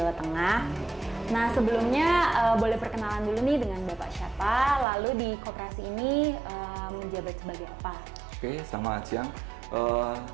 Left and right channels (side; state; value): left; drops out; at 4.9 s